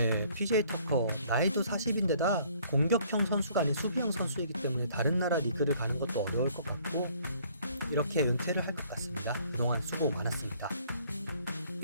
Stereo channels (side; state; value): both; inverted; correlation -0.60